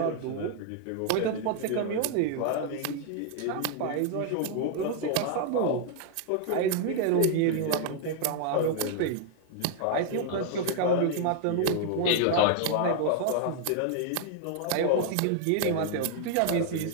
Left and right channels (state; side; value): different; both; correlation 0.00